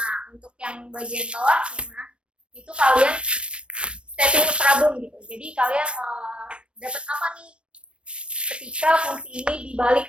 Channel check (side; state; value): left; late; 0.059 ms